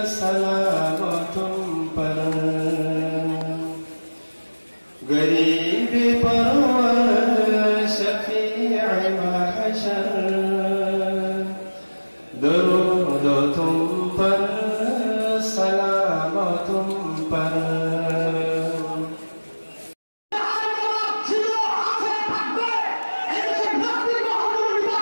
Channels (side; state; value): both; inverted; correlation -1.00